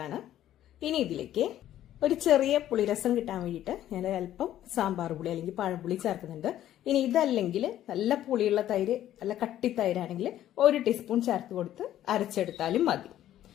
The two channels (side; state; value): right; quieter; 12.4 dB